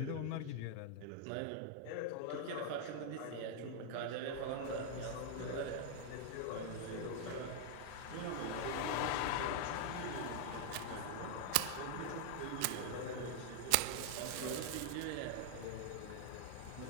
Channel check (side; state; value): both; different; correlation 0.00